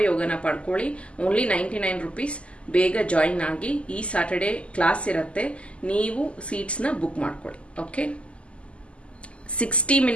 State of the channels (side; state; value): right; late; 0.056 ms